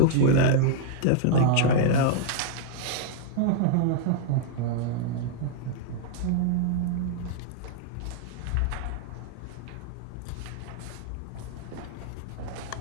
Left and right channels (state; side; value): different; both; correlation -0.01